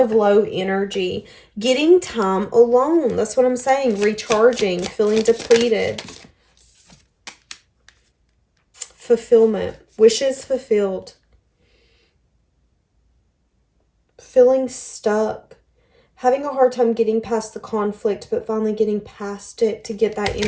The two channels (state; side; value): identical; both; correlation 1.00